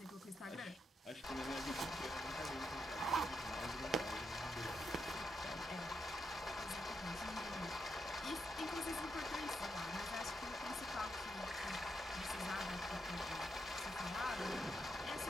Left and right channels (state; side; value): normal; both; correlation 0.82